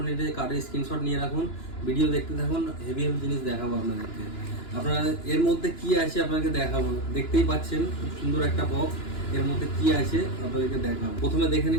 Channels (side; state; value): right; late; 2.9 ms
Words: নিতে কার্ডের স্ক্রিনশট নিয়ে রাখুন, ভিডিও দেখতে থাকুন, হেভি হেভি জিনিস দেখাবো আপনাদেরকে। আপনারা এর মধ্যে কি আছে আপনাকে দেখাবো, দেখতেই পাচ্ছেন খুব সুন্দর একটা বক্স। এর মধ্যে কি আছে আপনাদেরকে দেখাবো। প্রথমে দেখে